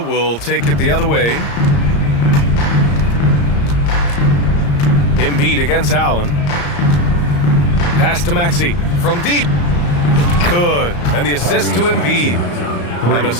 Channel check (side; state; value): right; late; 34 ms